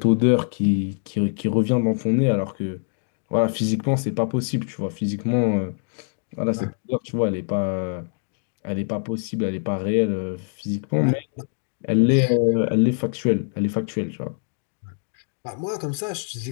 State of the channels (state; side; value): silent; right; digital silence